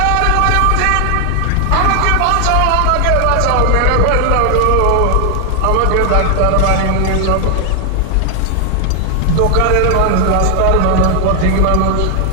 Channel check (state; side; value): different; both; correlation 0.00